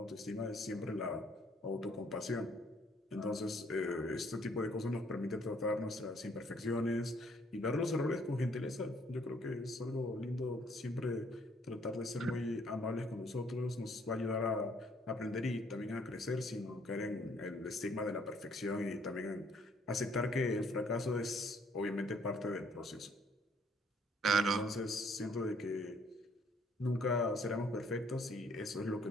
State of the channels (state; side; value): normal; both; correlation 0.64